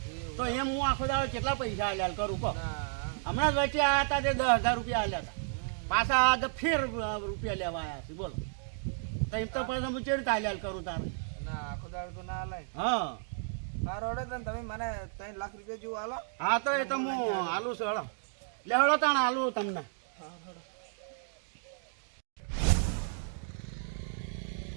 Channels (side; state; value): left; silent; digital silence